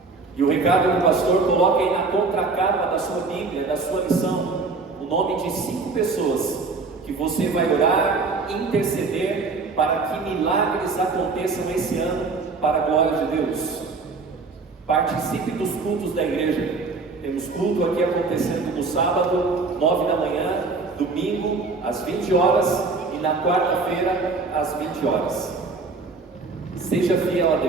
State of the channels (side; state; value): left; quieter; 4.1 dB